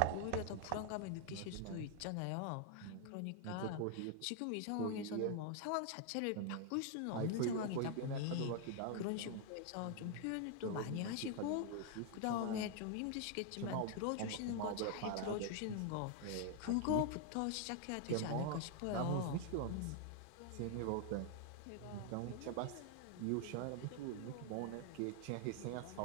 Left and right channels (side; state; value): both; different; correlation 0.00